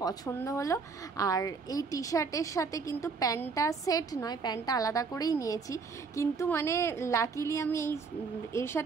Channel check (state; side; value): quieter; left; 4.8 dB